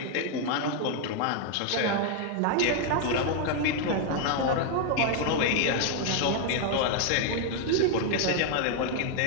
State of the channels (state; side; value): different; both; correlation 0.00